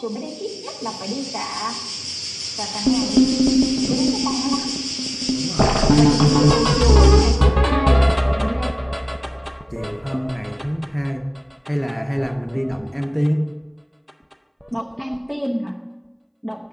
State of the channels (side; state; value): both; identical; correlation 1.00